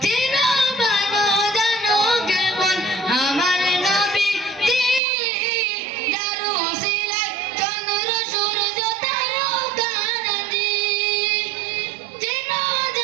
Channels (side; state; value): left; drops out; at 5.0 s